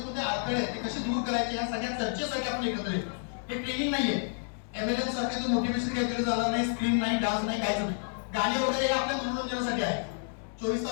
कोणते अडथळे आहेत ते कसे दूर करायचे, या सगळ्या चर्चेसाठी आपण एकत्र येतो. हे ट्रेनिंग नाहीये, एमएलएम सारखे मोटिवेशन काहीतरी झालं नाही, स्क्रीन नाही, डान्स नाही, काहीच नाही. गाणी वगैरे हे आपल्या मनोरंजनासाठी आहे. 24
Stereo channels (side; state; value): right; silent; digital silence